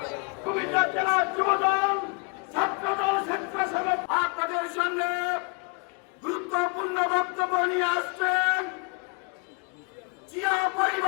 জেলার যুবদল, ছাত্রদল, স্বেচ্ছাসেবক আপনাদের সামনে গুরুত্বপূর্ণ বক্তব্য নিয়ে আসছেন জিয়া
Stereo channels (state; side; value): quieter; right; 31.5 dB